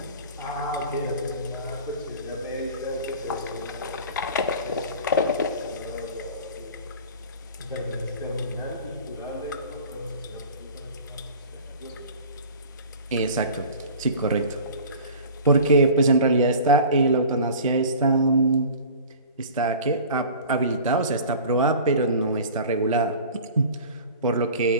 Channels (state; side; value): inverted; both; correlation -0.41